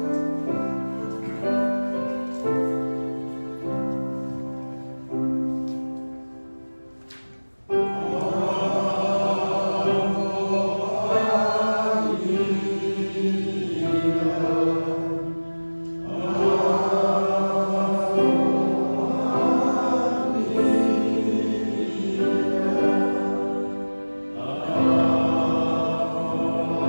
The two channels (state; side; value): inverted; both; correlation -1.00